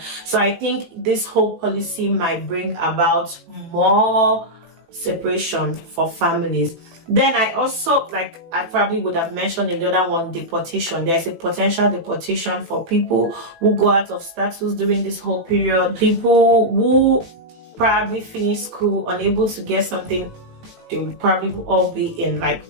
So I think this whole policy might bring about more separation for families. Then I also, like I probably would have mentioned in the other one, deportation. There's a potential deportation for people who go out of status during this whole period. People who probably finish school unable to get something, they will probably all be in like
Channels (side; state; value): left; late; 18 ms